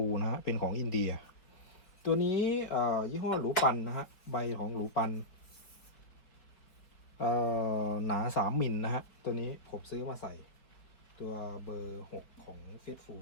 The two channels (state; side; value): late; right; 4.6 ms